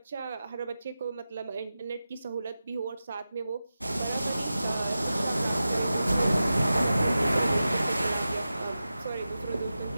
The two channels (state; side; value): inverted; both; correlation -0.93